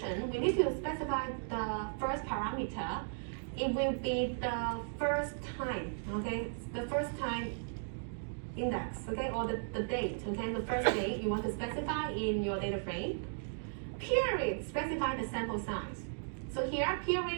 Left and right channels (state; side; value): silent; left; digital silence